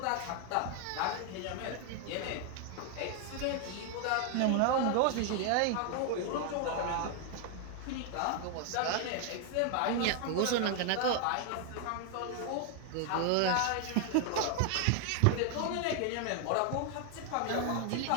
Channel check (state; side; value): different; both; correlation 0.00